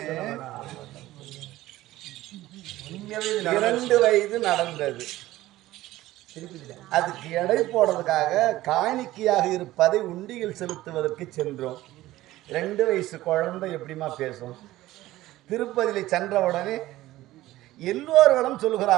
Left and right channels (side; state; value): left; quieter; 16.2 dB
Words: 2 வயது நடந்தது. அதுக்கு எடை போடுறதுக்காக காணிக்கையாக இருப்பதை உண்டியில் செலுத்துவதற்கு சென்றோம். 2 வயசு குழந்தை எப்படிமா பேசும்? திருப்பதியில் சென்றவுடனே எல்லோர்களும்